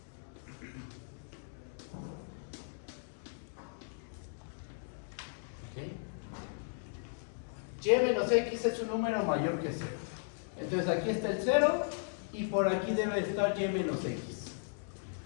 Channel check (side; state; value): right; silent; digital silence